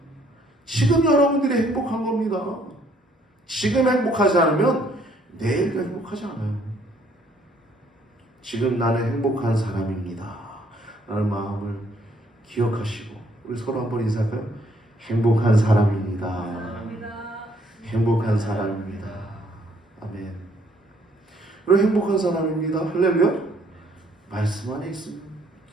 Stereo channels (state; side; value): normal; both; correlation 0.65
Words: 지금 여러분들이 행복한 겁니다. 지금 행복하지 않으면 내일도 행복하지 않아요. 지금 나는 행복한 사람입니다 라는 마음을 기억하시고 우리 서로 한번 인사할까요? 행복한 사람입니다. 행복한 사람입니다. 아멘. 그리고 행복한 사람입니다. 할렐루야. 말씀 안에 있으면,